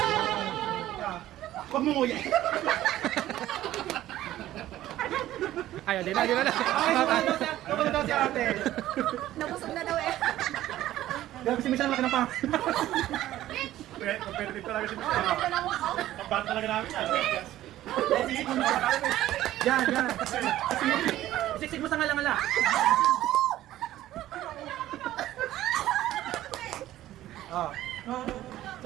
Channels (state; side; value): quieter; left; 14.1 dB